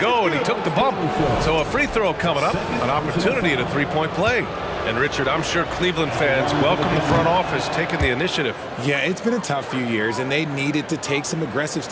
and he took the bump. So a free throw coming up, an opportunity at a 3-point play. And Richard, I'm sure Cleveland fans welcome the front office taking the initiative. Yeah, it's been a tough few years, and they needed to take some aggressive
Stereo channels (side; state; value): both; identical; correlation 1.00